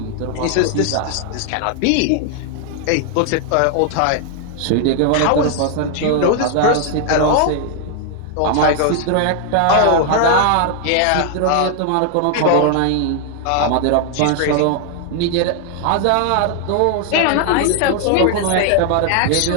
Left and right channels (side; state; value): both; different; correlation 0.00